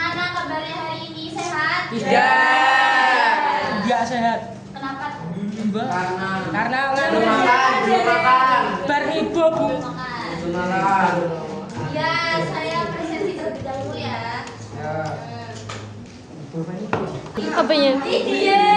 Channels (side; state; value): both; identical; correlation 1.00